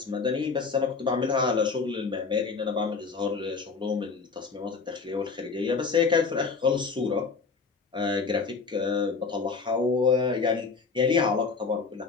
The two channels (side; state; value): right; quieter; 4.9 dB